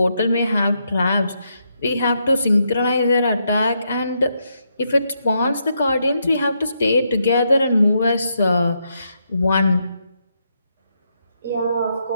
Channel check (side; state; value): both; inverted; correlation -0.80